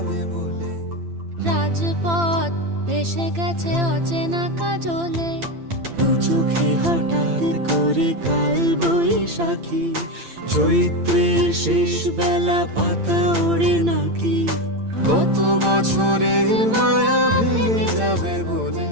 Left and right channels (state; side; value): late; left; 8.8 ms